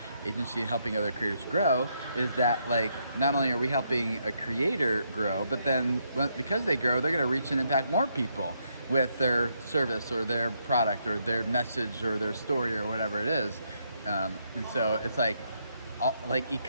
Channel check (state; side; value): inverted; both; correlation -0.76